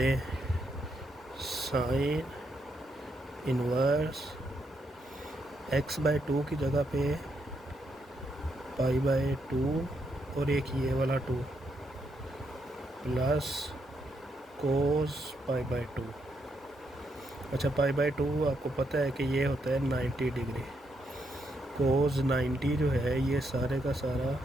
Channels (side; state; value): both; normal; correlation 0.79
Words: साइन इनवर्स x/2 की जगह पे π/2 और एक ये वाला 2 प्लस कोस π/2। अच्छा, π/2 आपको पता है कि ये होता है 90 डिग्री। कोस 90 जो है ये सारे का सारा